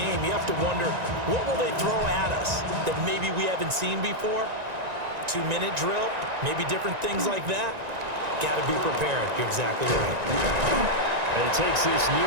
you have to wonder, what will they throw at us that maybe we haven't seen before? 2-minute drill, maybe different things like that. Got to be prepared. You're exactly right. And he takes this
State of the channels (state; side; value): late; left; 1.9 ms